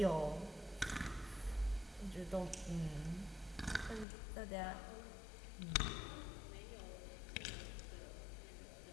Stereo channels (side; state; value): right; drops out; at 4.0 s